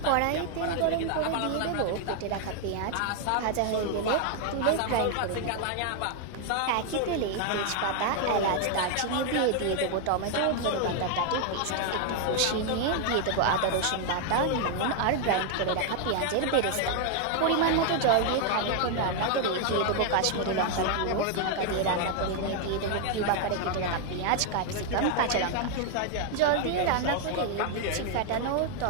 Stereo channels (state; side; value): different; both; correlation 0.00